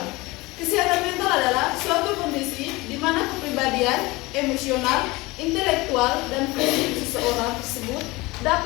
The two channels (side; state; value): right; quieter; 22.1 dB